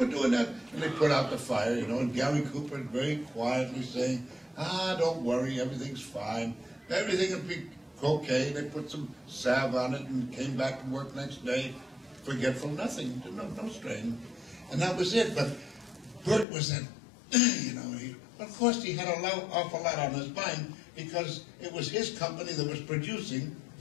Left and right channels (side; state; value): right; drops out; at 16.4 s